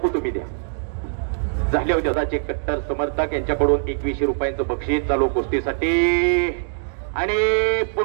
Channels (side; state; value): left; silent; digital silence